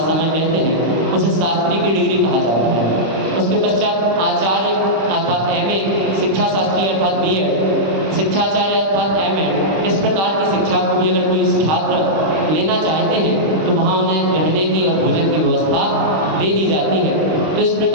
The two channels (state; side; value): late; left; 26 ms